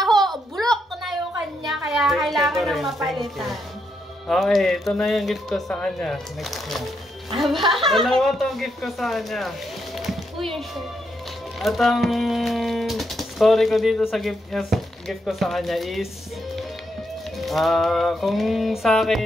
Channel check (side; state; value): both; normal; correlation 0.80